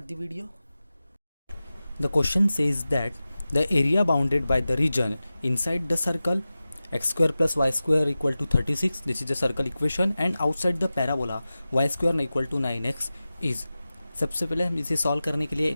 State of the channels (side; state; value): both; inverted; correlation -0.95